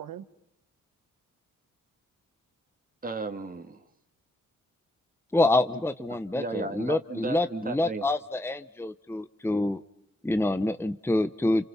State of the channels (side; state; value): both; normal; correlation 0.80